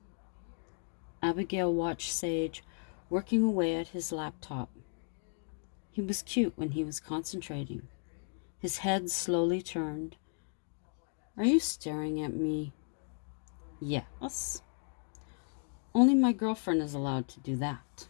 Abigail watched Sage working away at his laptop. He was cute when he was concentrating. His head slowly turned. Are you staring at me? Yes. Only my girlfriend is allowed to do that.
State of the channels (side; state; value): right; silent; 55 dB below the other